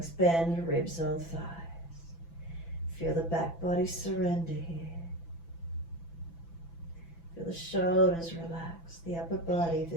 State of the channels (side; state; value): right; late; 6.0 ms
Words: bend, ribs on thighs. Feel the back body surrender here. Feel the shoulders relax, the upper body, if